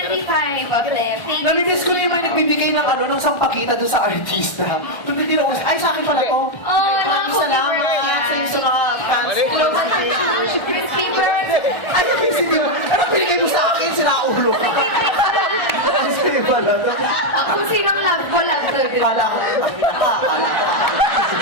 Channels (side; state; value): right; late; 1.4 ms